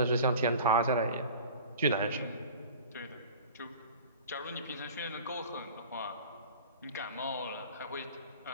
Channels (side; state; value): both; inverted; correlation -0.41